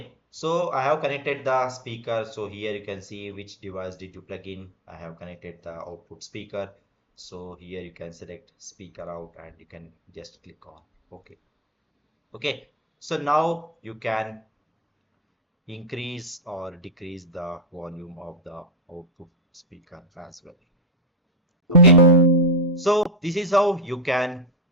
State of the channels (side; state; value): both; normal; correlation 0.11